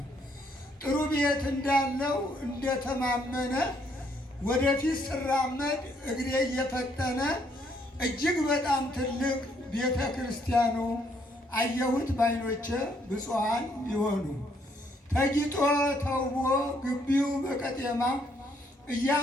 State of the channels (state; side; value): normal; both; correlation 0.70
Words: ጥሩ ቤት እንዳለው እንደተማመነ ወደፊት ስራመድ እግሬ እየፈጠነ እጅግ በጣም ትልቅ ቤተ ክርስቲያኑ አየሁት ባይኖቼ ብፁዓን ይሆኑ ተጊጦ ተውቦ ግቢው በቀጤማ